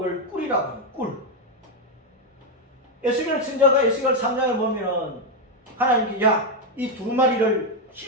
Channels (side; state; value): both; normal; correlation 0.03